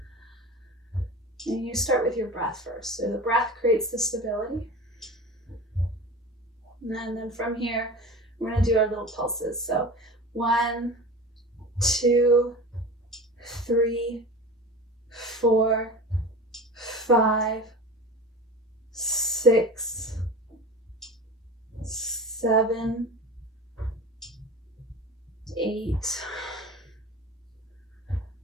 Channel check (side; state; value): both; normal; correlation 0.33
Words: And you start with your breath first. So the breath creates the stability. And then from here, we're going to do our little pulses. So 1, 2, 3, 4, 5, 6, 7, 8,